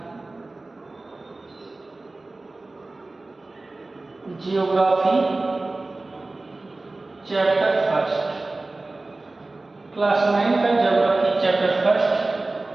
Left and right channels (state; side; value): quieter; left; 3.1 dB